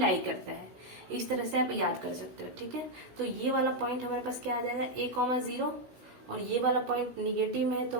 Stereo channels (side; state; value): left; late; 16 ms